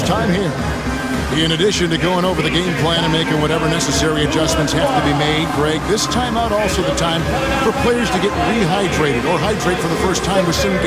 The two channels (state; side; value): identical; both; correlation 1.00